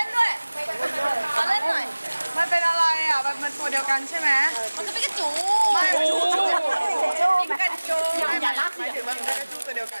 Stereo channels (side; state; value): both; inverted; correlation -1.00